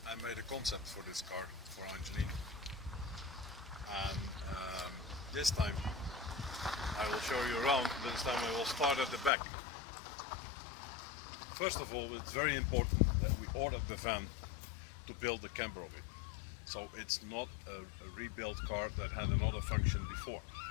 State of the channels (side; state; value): right; drops out; at 9.3 s